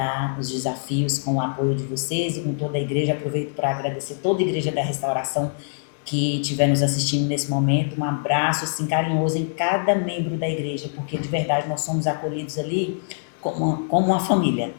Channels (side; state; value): right; silent; digital silence